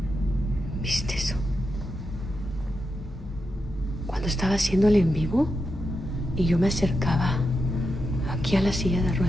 ¿Viste eso? Cuando estaba haciendo el en vivo y yo me acercaba aquí a la silla de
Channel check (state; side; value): normal; both; correlation 0.87